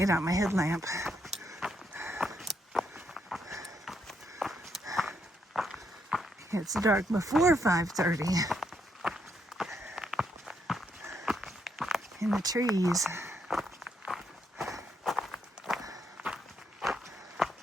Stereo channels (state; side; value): normal; both; correlation 0.77